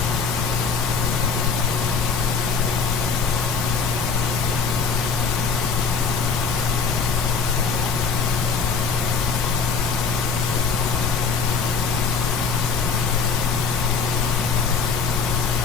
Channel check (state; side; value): quieter; right; 5.5 dB